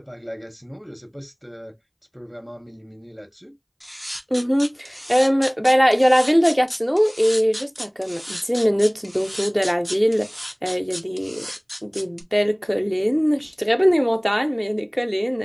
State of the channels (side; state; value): both; identical; correlation 1.00